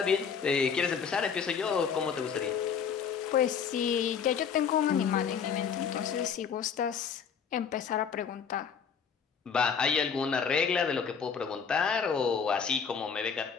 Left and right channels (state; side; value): quieter; right; 6.8 dB